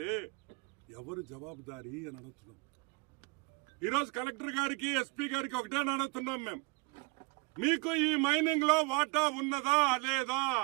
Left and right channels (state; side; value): quieter; left; 27.1 dB